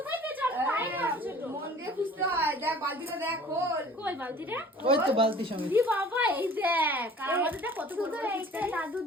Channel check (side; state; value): both; normal; correlation 0.47